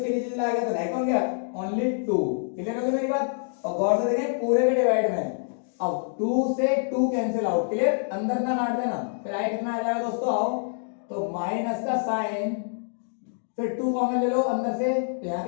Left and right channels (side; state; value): right; silent; digital silence